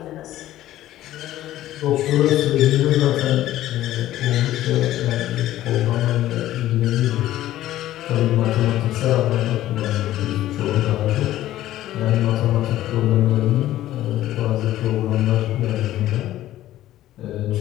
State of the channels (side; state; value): right; quieter; 14.0 dB